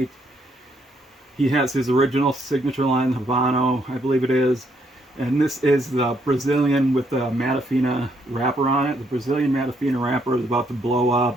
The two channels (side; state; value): both; normal; correlation 0.72